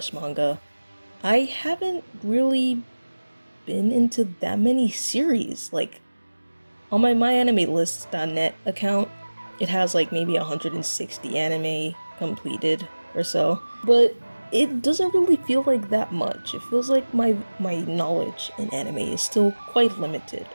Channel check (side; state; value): both; inverted; correlation -1.00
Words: I haven't really been into that many series. Like, on my myanimelist.net account, it has like maybe 160 anime completed or so, but it doesn't really feel like that much. It feels like my knowledge in anime is still quite limited,